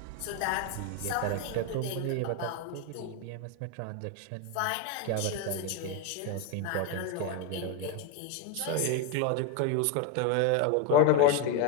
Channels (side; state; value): both; different; correlation 0.02